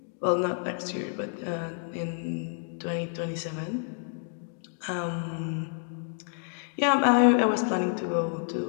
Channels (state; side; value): silent; right; 59 dB below the other